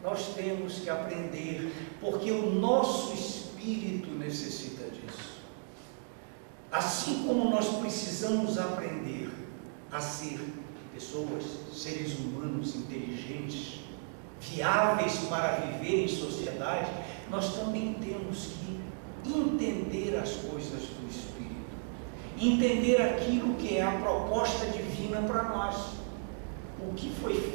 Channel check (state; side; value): silent; left; 55 dB below the other